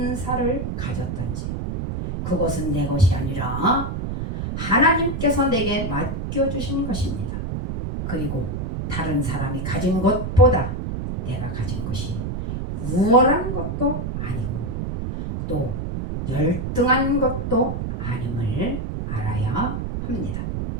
가졌던지 그것은 내 것이 아니라 하나님께서 내게 맡겨주신 것입니다. 그리고 다른 사람이 가진 것보다 내가 가진 것이 우월한 것도 아니고 또 열등한 것도 아님을 알아야 합니다.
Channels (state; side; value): noise; right; rumble, 4 dB below the sound